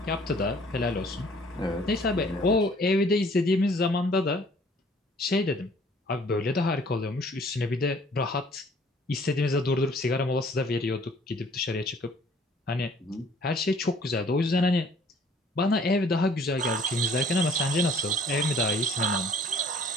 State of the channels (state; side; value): normal; both; correlation 0.57